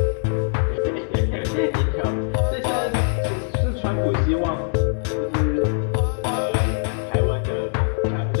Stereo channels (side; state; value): right; silent; 64 dB below the other